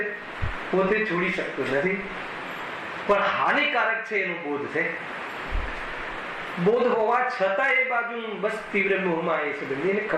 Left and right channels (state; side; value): identical; both; correlation 1.00